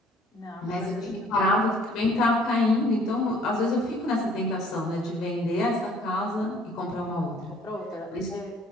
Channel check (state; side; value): normal; both; correlation 0.57